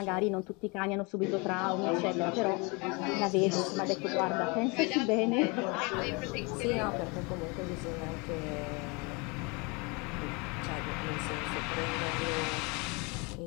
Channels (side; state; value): right; quieter; 29.1 dB